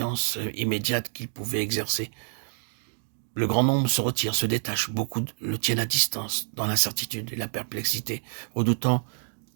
immédiate qu'ils pouvaient exercer. Le grand nombre se retire, se détache, beaucoup le tiennent à distance, dans l'incertitude et la perplexité, redoutant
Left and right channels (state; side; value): silent; left; 59 dB below the other